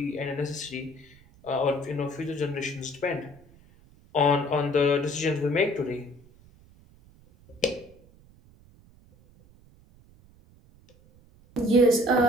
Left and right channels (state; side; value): noise; right; rumble, 27 dB below the sound